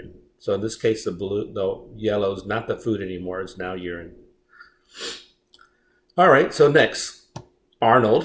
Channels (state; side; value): identical; both; correlation 1.00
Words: So in this case, the yellow is not the food anymore, it's now urine. All right, so next, Arnold